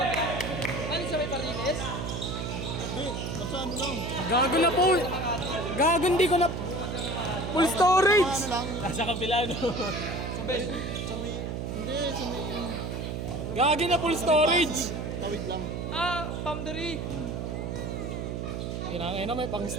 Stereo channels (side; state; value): right; noise; hum, 4 dB below the sound